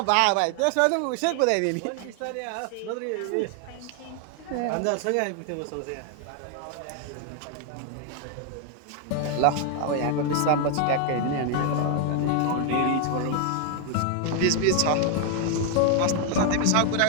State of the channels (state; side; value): different; both; correlation 0.00